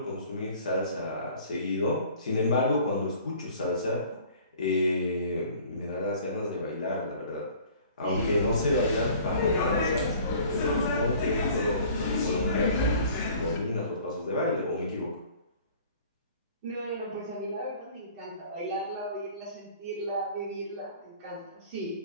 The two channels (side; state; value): both; inverted; correlation -0.50